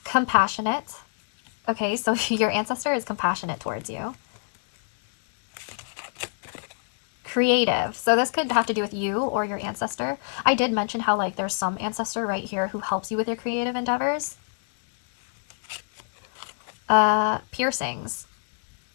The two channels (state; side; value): silent; right; digital silence